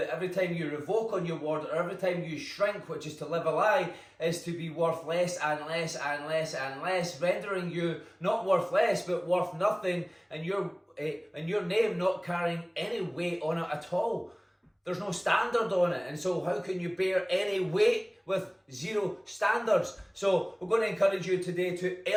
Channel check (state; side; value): identical; both; correlation 1.00